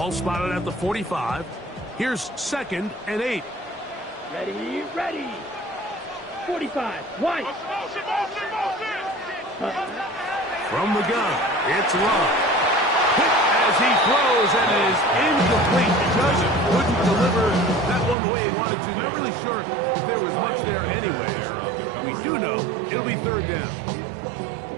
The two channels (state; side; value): drops out; left; at 18.2 s